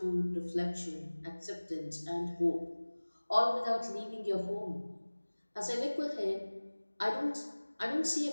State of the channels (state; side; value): inverted; both; correlation -1.00